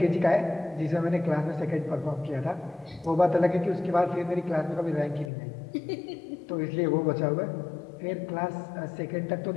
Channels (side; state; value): right; drops out; at 5.3 s